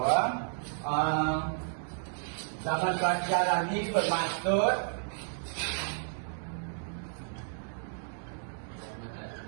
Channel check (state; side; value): silent; left; digital silence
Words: zaman prasejarah ni bermaksud